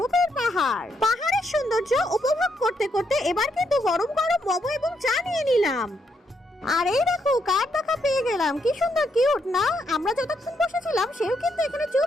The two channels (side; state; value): both; normal; correlation 0.77